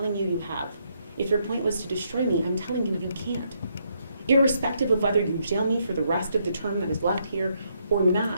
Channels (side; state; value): both; inverted; correlation -0.76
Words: you, you have. If your point was to destroy me, I'm telling you, you can't. Irrespective of whether you jail me for the rest of the term that is left here or